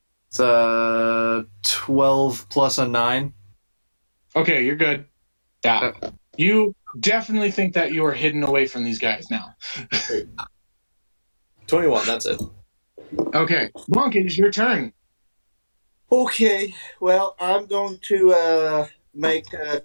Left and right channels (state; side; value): inverted; both; correlation -1.00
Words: It's 12 plus a 9. Okay, you're good. Yeah. You definitely think that you are hidden away from these guys now. 21, that's it. Okay. Monk, it is your turn. Okay, well, I'm going to make